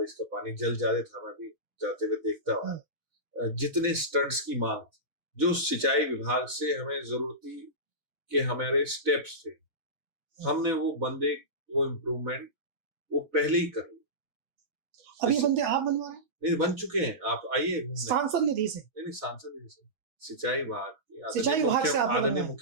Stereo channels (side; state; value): left; late; 6.2 ms